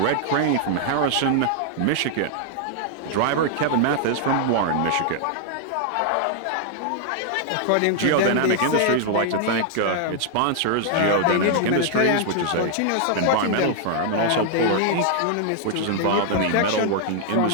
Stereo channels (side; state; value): both; different; correlation -0.01